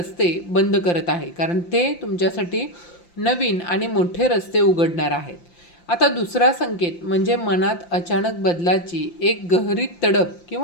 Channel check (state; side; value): late; right; 5.8 ms